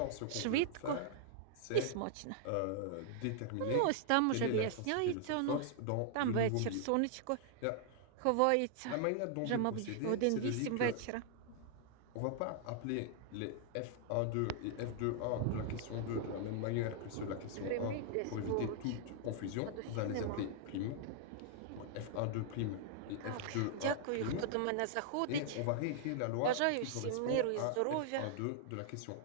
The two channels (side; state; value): both; different; correlation -0.01